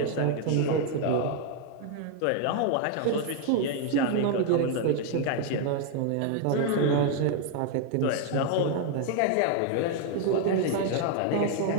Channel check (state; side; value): different; both; correlation 0.01